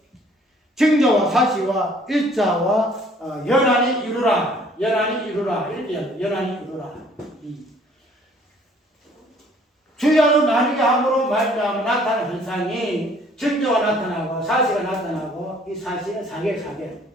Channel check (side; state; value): both; normal; correlation 0.58